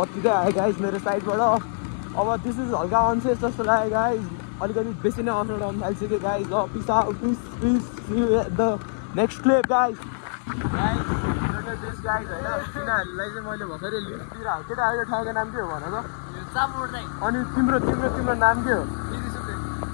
आयो गाइज मेरो साइडबाट। अब दिस इज हल्का अनसेफ जस्तो लाग्यो गाइज। अलिकति बेसी नै अफ रोड आउनु थालिसक्यो गाइज। ल peace out. Peace the next clip guys. This guys होइन, तिनीहरूलाई चाहिँ मैले भर्खरै लिस्टतिर केटाहरूको ठाउँको नाम के हो भन त? अनि तिम्रो नाम के हो?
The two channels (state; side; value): silent; right; digital silence